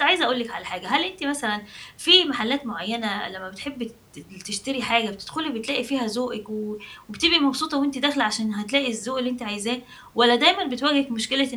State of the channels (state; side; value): identical; both; correlation 1.00